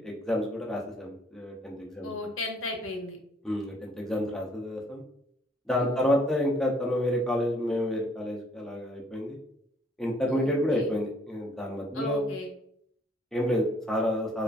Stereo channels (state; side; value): normal; both; correlation 0.62